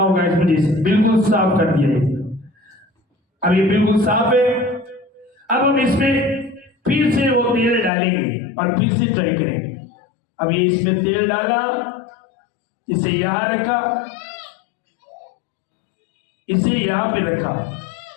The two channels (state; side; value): drops out; right; at 7.9 s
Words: इस वजह से, बिल्कुल साफ कर दिया है। अब ये बिल्कुल साफ है। अब हम इसमें फिर से वो तेल डालेंगे और फिर से ट्राई करेंगे। अब ये इसमें तेल डाला, इसे यहां रखा, इसे यहां पे रखा